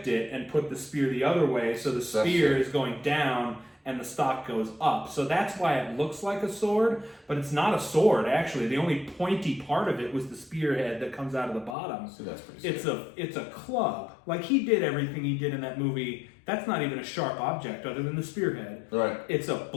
it and put the spear the other way, so the spear is going down and the stock goes up. So that's why it looks like a sword, but it's not a sword, actually. The only pointy part of it was the spearhead that comes out of the bottom. So that's pretty sick. It's a club. Like, he did everything he did in that movie. That's not even a sharp object other than the spearhead. Right. It's a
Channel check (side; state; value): right; drops out; at 11.8 s